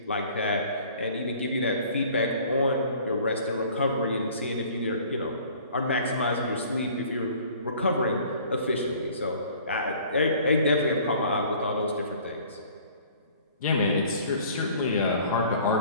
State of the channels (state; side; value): inverted; both; correlation -0.52